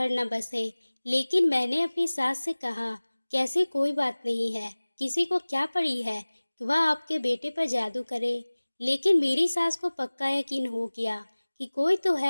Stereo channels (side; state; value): both; inverted; correlation -1.00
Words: न बसे। लेकिन मैंने अपनी सास से कहा कि ऐसी कोई बात नहीं है, किसी को क्या पड़ी है कि वह आपके बेटे पर जादू करे। लेकिन मेरी सास को पक्का यकीन हो गया कि कोई तो